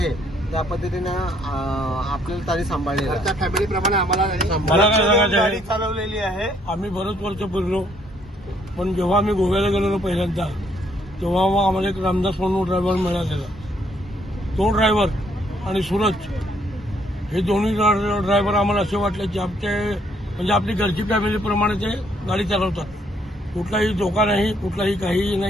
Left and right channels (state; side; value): normal; both; correlation 0.68